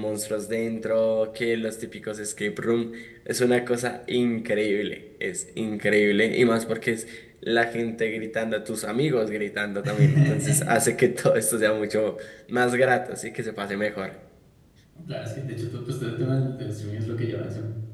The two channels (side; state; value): both; identical; correlation 1.00